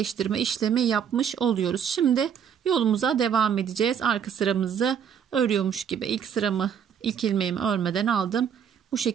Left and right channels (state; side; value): quieter; left; 8.0 dB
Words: işlemi yapmış oluyoruz. Şimdi yolumuza devam edeceğiz. Arka sıramızı örüyormuş gibi ilk ilmeğimi örmeden aldım. Bu